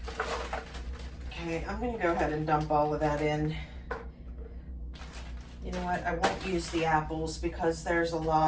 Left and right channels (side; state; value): both; identical; correlation 1.00